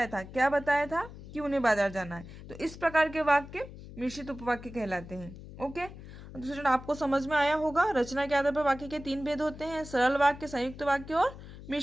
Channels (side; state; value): left; noise; hum, 15 dB below the sound